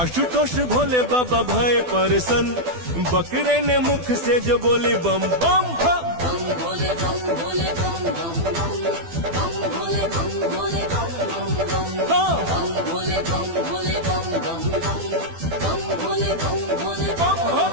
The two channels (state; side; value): late; left; 12 ms